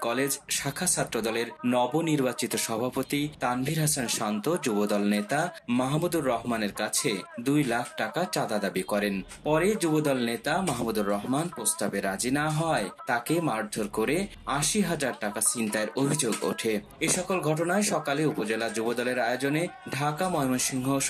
কলেজ শাখা ছাত্রদলের নবনির্বাচিত সভাপতি তানভীর হাসান শান্ত যুবদল নেতা মাহমুদুর রহমানের কাছে 2 লাখ টাকা চাঁদা দাবি করেন। পরে যুবদল নেতা মাহমুদুর রহমান প্রস্তাবে রাজি না হয় তাকে মারধর করে 80,000 টাকা ছিনতাইয়ের অভিযোগ ওঠে। এ সকল ঘটনায় সকালে উপজেলা যুবদলের আয়োজনে ঢাকা ময়মনসিংহ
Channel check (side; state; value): both; identical; correlation 1.00